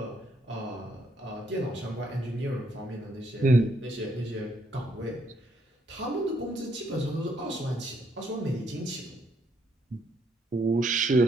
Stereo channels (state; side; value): normal; both; correlation 0.72